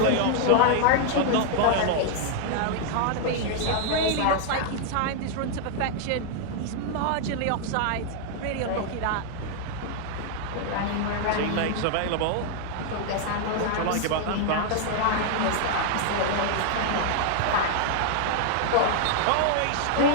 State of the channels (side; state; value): both; different; correlation 0.00